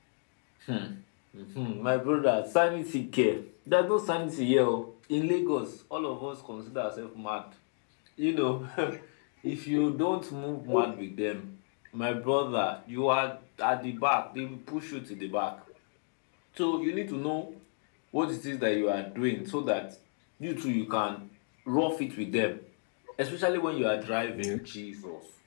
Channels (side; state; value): right; silent; 56 dB below the other